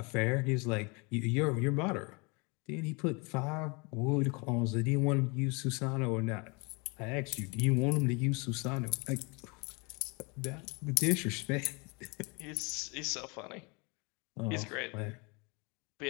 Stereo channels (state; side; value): quieter; right; 30.0 dB